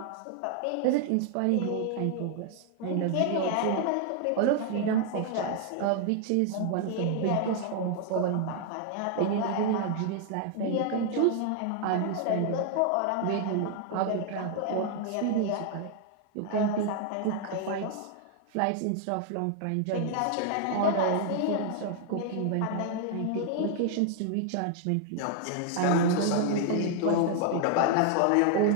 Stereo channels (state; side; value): different; both; correlation 0.00